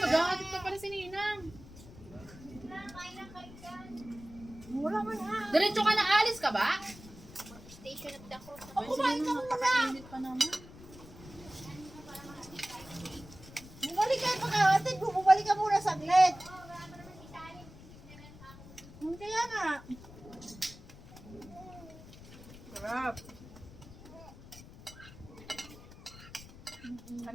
pa pala si Ninang. Wala man Diretso ka na, alis ka ba? Station at ako. Ay, kumain ka muna. Napakainit pa naman. Bumalik ka pagkakatid mo. Bumalik ka muna saglit. Kaya nga. Sarap.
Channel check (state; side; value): noise; left; rumble, 18 dB below the sound